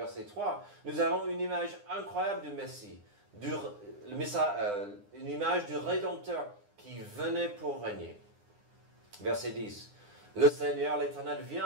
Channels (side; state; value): left; late; 9.8 ms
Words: 3, nous avons une image incroyable du Messie, une image du Rédempteur qui venait pour régner. Verset 10. Le Seigneur, l'Éternel, vient